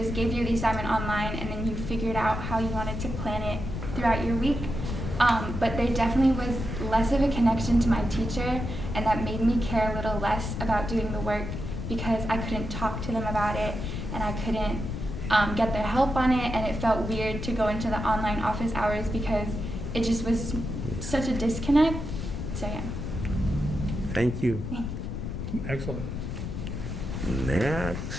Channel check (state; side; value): noise; left; rumble, 5 dB below the sound